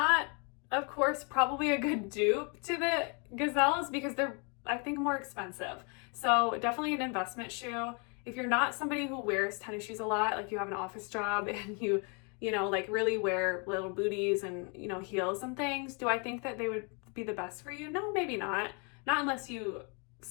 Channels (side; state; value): right; quieter; 35.5 dB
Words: of course, probably a good dupe to the Gazelles because they're, I think, more expensive. So definitely an investment shoe. If you're not somebody who wears tennis shoes a lot, like you have an office job and you like really wear little booties and, heels and things, do I think that they would be the best for you? No, maybe not. Not unless you